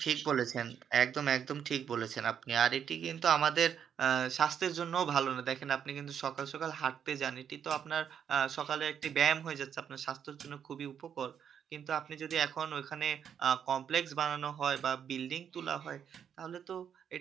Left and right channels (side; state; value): left; quieter; 8.4 dB